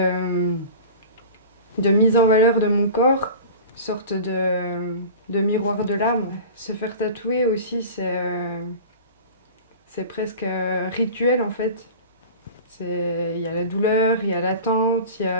mise en valeur de mon corps, une sorte de miroir de l'âme. Se faire tatouer aussi, c'est presque rituel en fait. Il y a la douleur, il y a l'attente, il y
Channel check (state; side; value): inverted; both; correlation -0.37